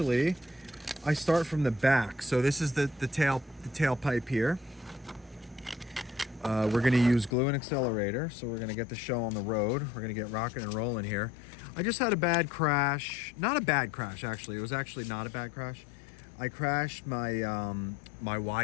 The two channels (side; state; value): right; drops out; at 7.4 s